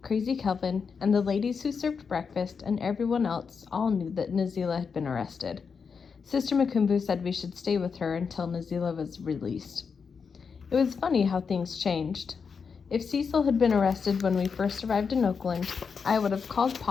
Crazy Kelvin, and the ladies who served breakfast and everyone else all knew that Nazila had been arrested. Sister Makumbo said we should stay with her until Nazila was released. It was funny how things changed. If Cecil had been arrested when we first arrived in Oakland, I would have called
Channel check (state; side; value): quieter; right; 5.8 dB